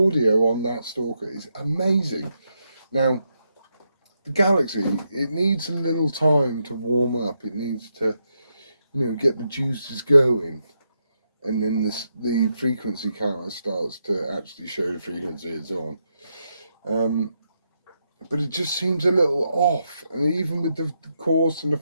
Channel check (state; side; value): inverted; both; correlation -0.82